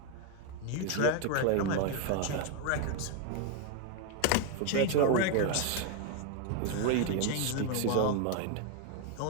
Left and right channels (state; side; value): different; both; correlation 0.01